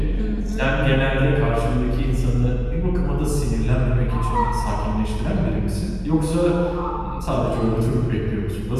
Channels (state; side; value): identical; both; correlation 1.00